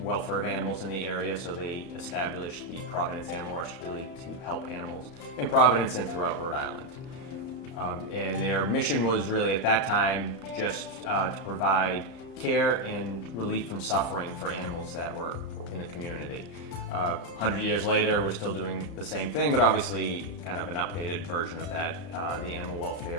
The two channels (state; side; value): late; right; 31 ms